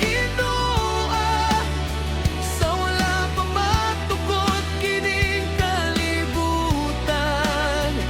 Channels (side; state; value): both; identical; correlation 1.00